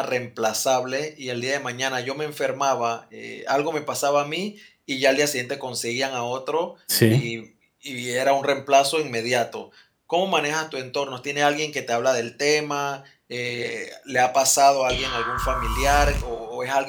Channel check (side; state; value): both; identical; correlation 1.00